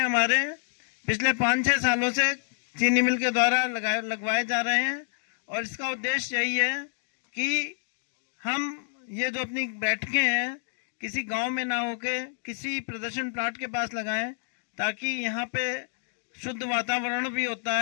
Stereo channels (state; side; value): silent; right; digital silence